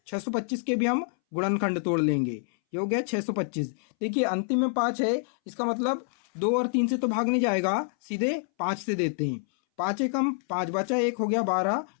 625 के भी हम गुणनखंड तोड़ लेंगे, ये हो गया 625। देखिए, अंतिम में 5 है, इसका मतलब 2 और 3 से तो भाग नहीं जाएगा, सीधे 5 से देते हैं। 5 एकम 5, बचा 1, हो गया 12,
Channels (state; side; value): silent; right; 60 dB below the other